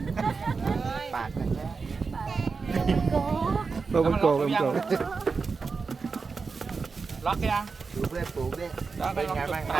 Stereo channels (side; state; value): left; quieter; 4.7 dB